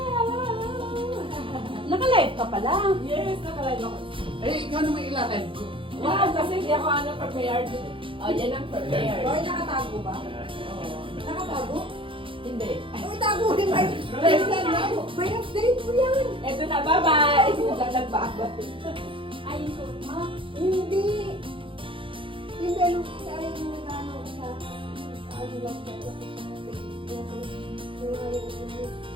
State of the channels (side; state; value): left; late; 0.25 ms